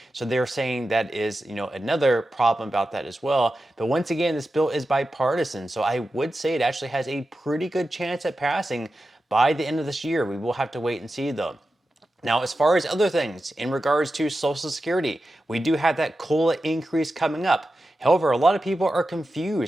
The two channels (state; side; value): normal; both; correlation 0.92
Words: So they're saying that is, another problem about that as well. But once again, this bill is bipartisan. So I would say it actually has a pretty good chance at passing by the end of this year. We will have to wait and see though. Now, as far as other things in regards to Social Security, we do have that COLA increase coming up. However, a lot of people are